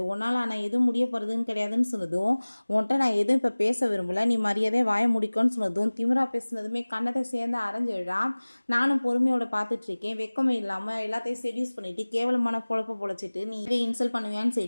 உன்னால் ஆனால் எதுவும் முடிய போகிறதுன்னு கிடையாதுன்னு சொன்னதும் உன்கிட்ட நான் எதுவும் இப்போ பேச விரும்பல, நீ மரியாதையை வாய முடிக்கும்னு சொன்னதும் திமிரா பேசுனதுமே கண்ணத்தை சேர்ந்து அரைஞ்சிடுறான். நானும் பொறுமையோட பார்த்துட்டு இருக்கேன், வெக்கமே இல்லாமல் எல்லாத்தையும் செடியூஸ் பண்ணிட்டு கேவலமான பொழப்ப பொழைச்சிட்டு நீ இதே இன்சல்ட் பண்ணுவியான்னு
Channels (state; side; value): inverted; both; correlation -1.00